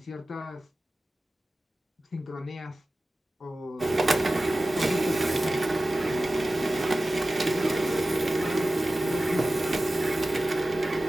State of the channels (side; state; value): both; normal; correlation 0.95